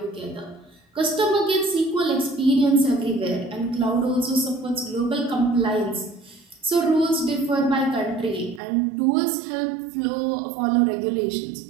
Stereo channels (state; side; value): drops out; left; at 8.6 s